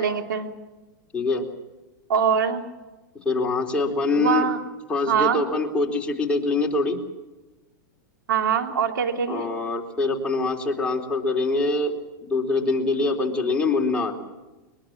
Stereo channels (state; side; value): normal; both; correlation 0.32